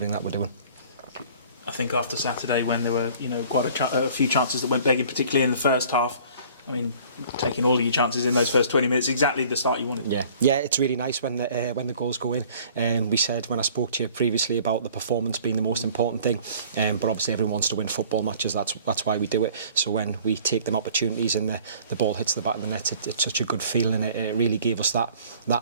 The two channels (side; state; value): both; inverted; correlation -0.52